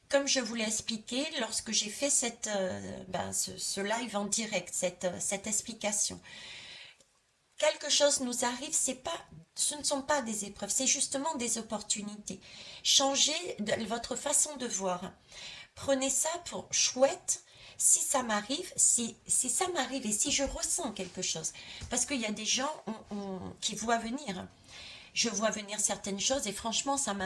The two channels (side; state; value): both; identical; correlation 1.00